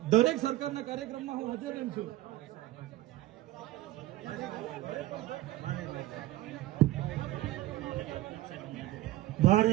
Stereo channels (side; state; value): left; quieter; 16.3 dB